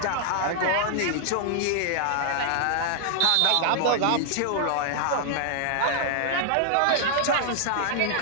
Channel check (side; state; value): both; different; correlation 0.00